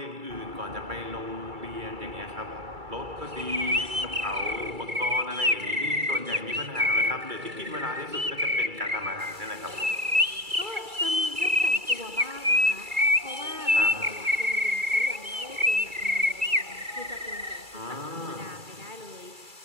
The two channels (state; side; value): late; left; 2.3 ms